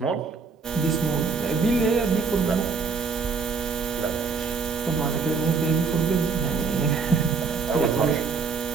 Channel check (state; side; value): quieter; left; 5.0 dB